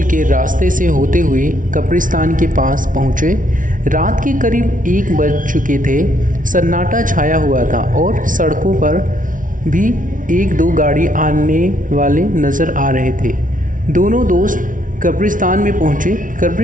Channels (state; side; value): late; left; 0.38 ms